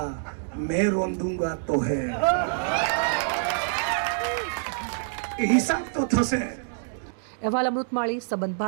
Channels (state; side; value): silent; left; digital silence